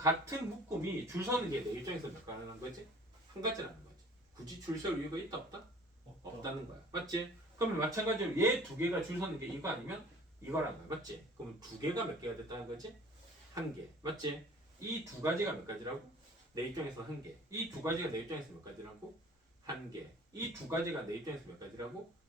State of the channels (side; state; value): both; normal; correlation 0.49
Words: 묶음이 줄 서는 게 내 입장에서 몇 가능한 거지? 한 가지라는 거지. 굳이 줄 설 이유가 있다 없다? 없다는 거야. 맞지? 그러면 마찬가지로 얘 두 개가 줄 서는 게 이거 아니면 이거라는 거야. 맞지? 그러면 두 개가 몇 개가 됐다는 거지? 한 개. 맞지? 이 두 가지가 몇 가지라고? 내 입장에서 한 개. 이 두 가지가 내 입장에서 몇 가지라고? 한 개. 이 두 가지가 내 입장에서 몇 가지라고?